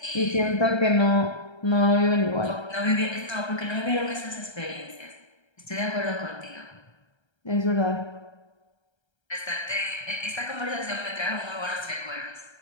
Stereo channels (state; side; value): late; right; 1.3 ms